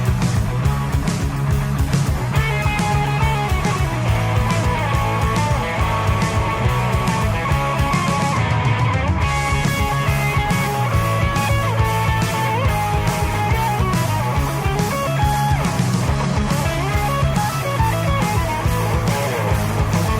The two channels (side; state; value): both; identical; correlation 1.00